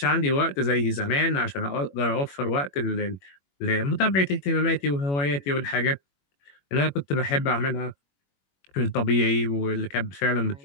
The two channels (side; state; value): right; late; 21 ms